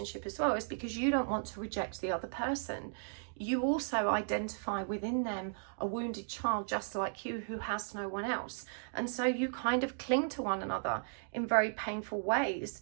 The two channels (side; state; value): left; silent; digital silence